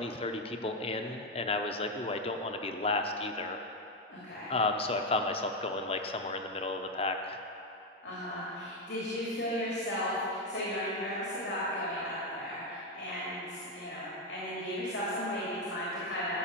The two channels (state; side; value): normal; both; correlation 0.07